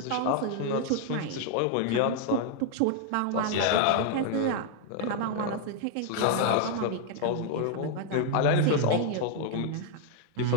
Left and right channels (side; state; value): both; different; correlation 0.00